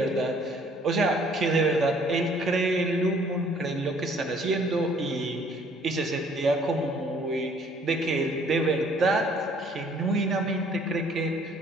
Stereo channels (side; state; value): both; normal; correlation 0.59